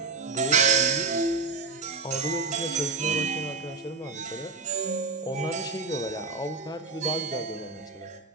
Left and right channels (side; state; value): left; quieter; 4.4 dB